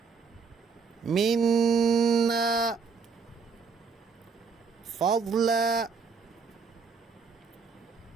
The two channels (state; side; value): quieter; left; 5.5 dB